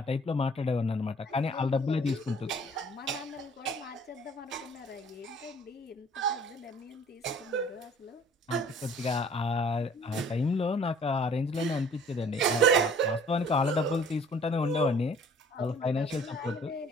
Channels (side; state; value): both; normal; correlation 0.53